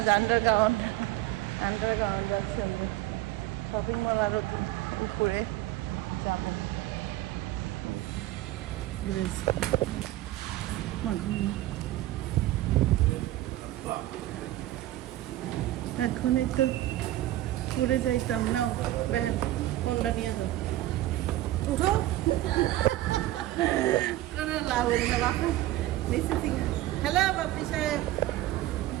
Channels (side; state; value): left; quieter; 15.5 dB